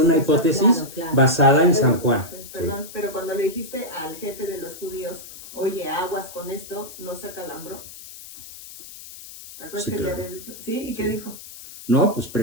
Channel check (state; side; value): noise; left; hiss, 15 dB below the sound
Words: hipótesis basada en San Juan. Perdón, pero cuando le dijiste al jefe de los judíos, oye, aguas con esto, ¿no se acalambró? ¿Te acuerdas Sí, que claro. le habías dicho? ¿Sí? ¿Y qué dijo? No, pues